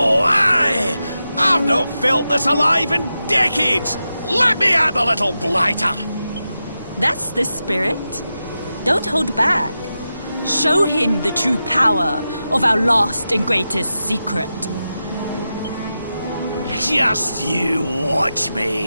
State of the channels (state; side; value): inverted; both; correlation -0.90